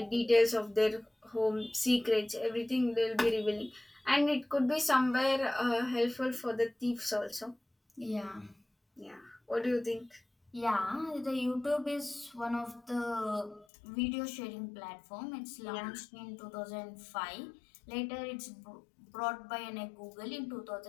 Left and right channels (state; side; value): drops out; right; at 13.7 s